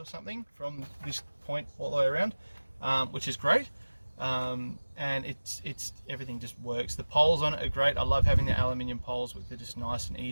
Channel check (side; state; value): both; inverted; correlation -1.00